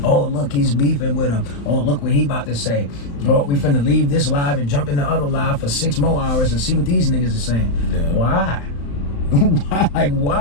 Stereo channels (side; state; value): right; late; 35 ms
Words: Oh, look, he's beefing with him. Oh, look what he about to say. Oh, we finna leave this live and jump in the other live for 6 more hours and see what these niggas are saying. Yeah. Why?